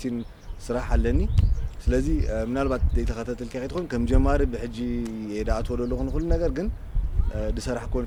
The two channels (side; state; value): both; identical; correlation 1.00